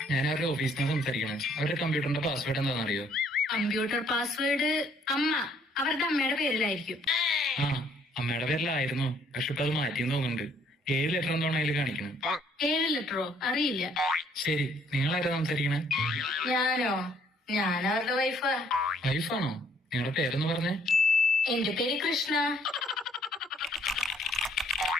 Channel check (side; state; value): both; normal; correlation 0.64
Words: ഞാൻ അവരുടെ ഓഫീസിൽ നിന്ന് സംസാരിക്കണേ. അവരുടെ കമ്പ്യൂട്ടറിന്റെ പാസ്വേഡ് എന്താണെന്ന് അറിയോ? കമ്പ്യൂട്ടർ പാസ്വേഡ് അമ്മ, അവരുടെ അമ്മയുടെ പേരിലായിരിക്കും. ആ, അമ്മയുടെ പേരിലായിരുന്നു. പക്ഷെ ഇപ്പൊ അത് മാറ്റിയെന്ന് തോന്നുന്നുണ്ട്. 7 ലെറ്റർ എന്താണോ അതിൽ കാണിക്കണം. 7 ലെറ്ററോ? അറിയില്ല. ശരി, നിങ്ങളാരാ സംസാരിക്കണേ? ഞാനോ? ഞാൻ അവരുടെ വൈഫാ. വൈഫാണോ? നിങ്ങളുടെ പേരെന്ന് പറഞ്ഞേ? എന്റെ പേര് കൃഷ്ണ.